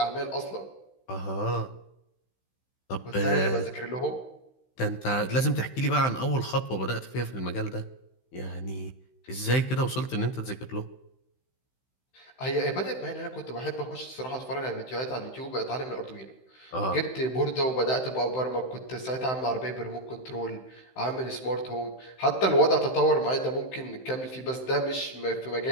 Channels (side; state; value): right; late; 16 ms